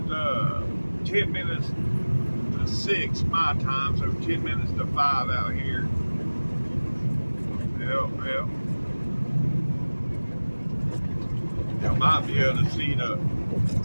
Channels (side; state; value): both; inverted; correlation -1.00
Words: 10 minutes to 6 my time, so 10 minutes to 5 out here. Yep. You might be able to see the